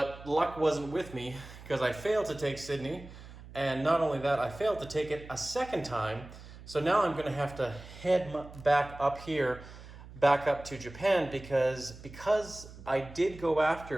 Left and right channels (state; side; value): noise; right; hum, 16 dB below the sound